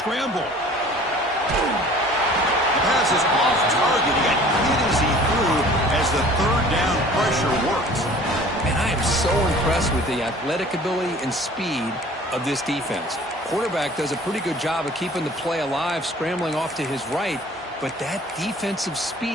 The pass is off target. He got hit as he threw as the 3rd down pressure worked. And I am so impressed with the athletic ability and speed of this defense. Quarterback does a pretty good job of keeping the play alive, scrambling off to his right, but that defensive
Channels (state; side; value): normal; both; correlation 0.48